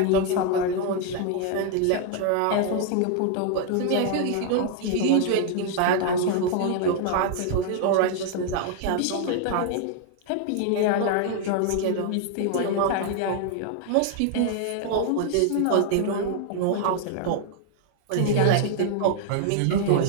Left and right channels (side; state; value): both; different; correlation 0.00